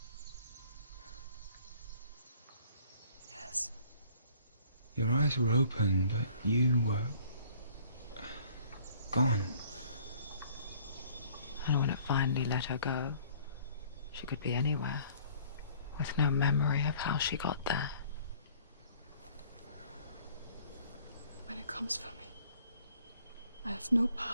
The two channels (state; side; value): inverted; both; correlation -0.55